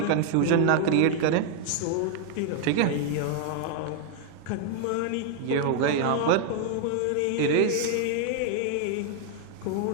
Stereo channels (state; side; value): different; both; correlation 0.00